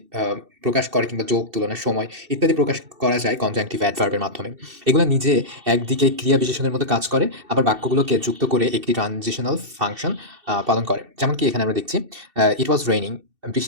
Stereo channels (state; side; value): late; left; 2.7 ms